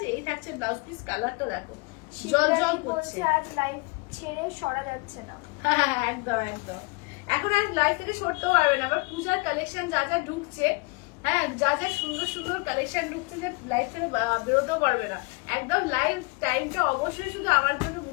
এই থাকছে ব্লাউজ পিস। কালারটা দেখো জল করছে। আজ লাইভ ছেড়ে সরা যাচ্ছে না। হ্যাঁ একদম একদম, এখন আর লাইভ থেকে সরতেও পারবে না। আবার পূজার কালেকশন যা যা ঢুকছে, হ্যাঁ যা যা সুন্দর সুন্দর কালেকশন ঢুকছে, যে লাইভ থেকে বেরোতেও পারবে না। একদম লাইভ টাইমটা অবশ্যই শুধু আমার জন্য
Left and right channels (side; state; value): right; quieter; 28.5 dB